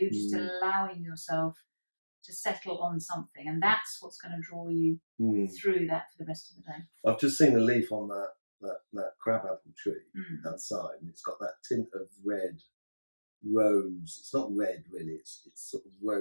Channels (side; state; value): both; inverted; correlation -1.00